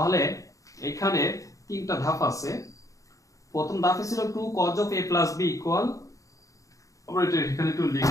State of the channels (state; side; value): late; right; 0.16 ms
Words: এখানে তিনটা ধাপ আছে। প্রথম ধাপে ছিল 2 cos of a plus b equal, আমরা এটা এখানে একটু